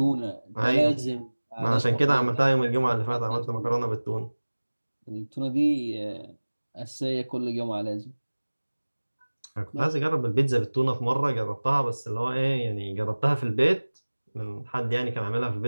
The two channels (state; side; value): inverted; both; correlation -1.00